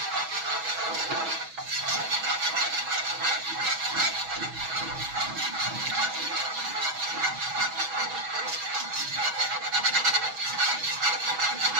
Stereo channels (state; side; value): late; left; 6.2 ms